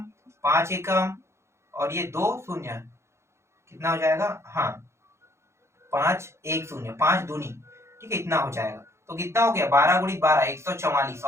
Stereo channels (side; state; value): left; late; 0.13 ms